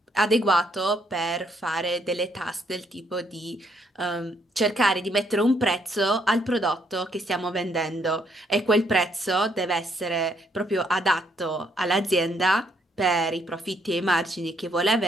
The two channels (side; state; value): both; normal; correlation 0.71